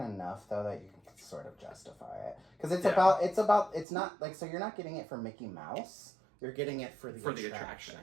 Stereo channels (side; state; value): left; drops out; at 3.9 s